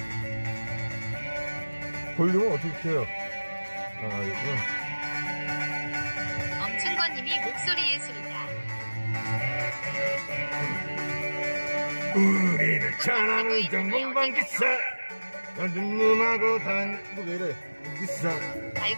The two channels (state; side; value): inverted; both; correlation -1.00